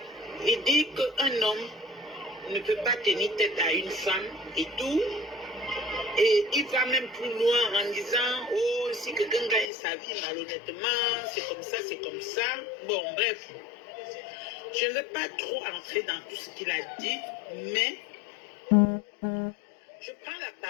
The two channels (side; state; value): right; drops out; at 9.7 s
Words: il dit qu'un homme ne peut pas tenir tête à une femme et tout. Et il va même plus loin en disant, oh, si quelqu'un gagne sa vie malhonnêtement, c'est comme ça, c'est comme ça. Bon, bref. Je ne vais pas trop entrer dans tout ce qu'il a dit, mais je prends la